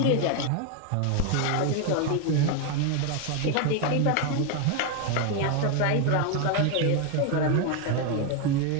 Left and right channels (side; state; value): both; different; correlation 0.01